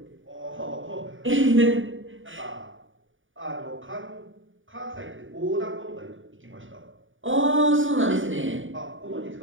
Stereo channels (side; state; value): left; late; 0.57 ms